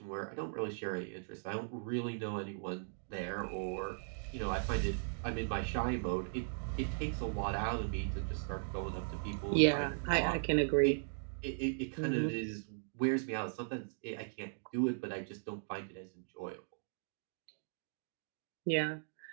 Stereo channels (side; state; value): left; silent; digital silence